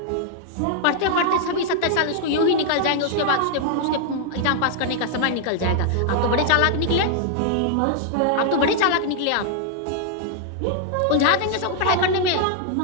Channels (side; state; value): both; different; correlation -0.01